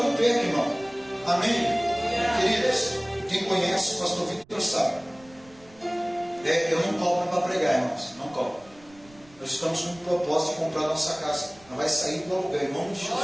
perca, irmão. Amém? Queridos, quem conhece o pastor Victor sabe. Eu não cobro para pregar, irmãos. Não cobro. Nós estamos com o propósito de comprar nossa casa. Não vai sair do aluguel, em nome de Jesus.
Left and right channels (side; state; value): right; noise; rumble, 26 dB below the sound